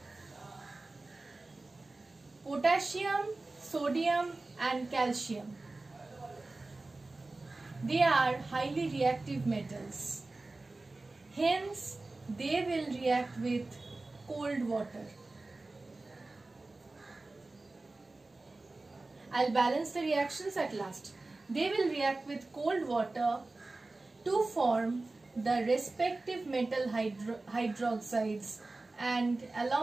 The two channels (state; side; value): quieter; left; 3.2 dB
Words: potassium, sodium and calcium, they are highly reactive metals. Hence, they will react with cold water. I'll balance the reactions at last. They will react with cold water to form the respective metal hydroxides and